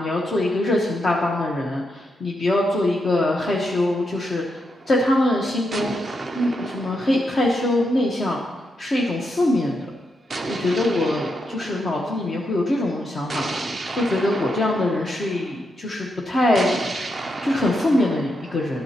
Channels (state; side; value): normal; both; correlation 0.83